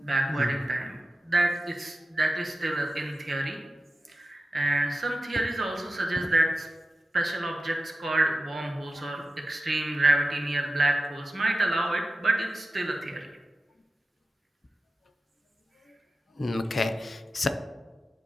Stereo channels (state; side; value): normal; both; correlation 0.93